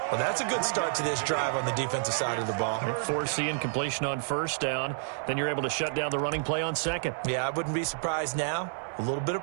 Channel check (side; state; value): left; silent; digital silence